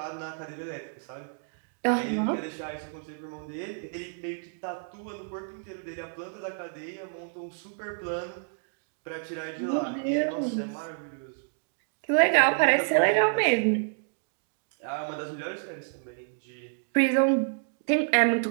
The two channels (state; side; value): silent; left; digital silence